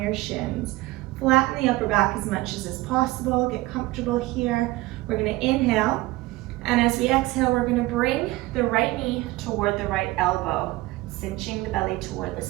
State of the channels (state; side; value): quieter; left; 19.4 dB